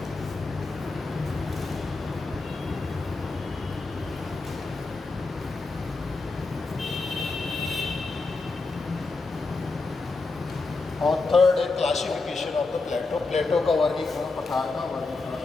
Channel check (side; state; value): right; quieter; 3.7 dB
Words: और थर्ड है क्लासिफिकेशन ऑफ द प्लेटो, प्लेटो का वर्गीकरण, पठार का वर्गीकरण।